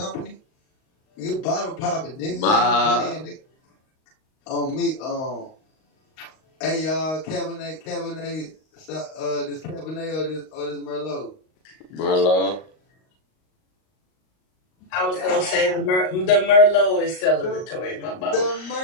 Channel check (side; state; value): right; late; 38 ms